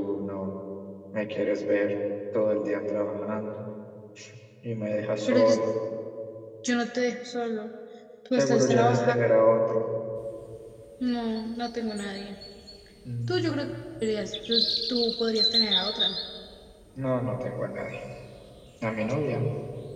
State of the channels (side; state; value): both; identical; correlation 1.00